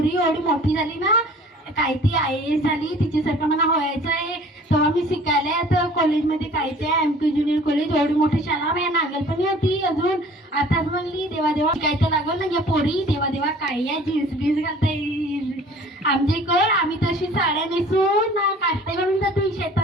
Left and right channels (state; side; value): normal; both; correlation 0.49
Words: एवढी मोठी झाली ना, काय ती IAS झाली, तिच्यासारखं मला व्हायचं आहे. तेव्हा मी शिकायला आता कॉलेजमध्ये काय ते MK ज्युनियर कॉलेज, एवढी मोठी शाळा माझ्या नागलपणी होती. अजून आताच म्हणली देवा देवा काय तर लागल ना या पोरी, देवा देवा काय या जीन्स बीन्स घालता येईल आमच्या इकडं. आम्ही तशी साड्या नेसून ना काष्टा घालून जातो